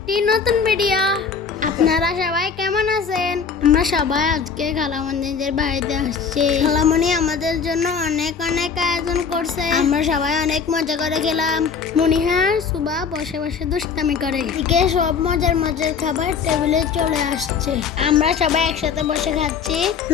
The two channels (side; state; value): right; quieter; 6.0 dB